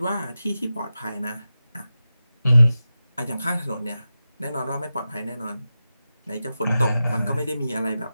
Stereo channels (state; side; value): inverted; both; correlation -0.92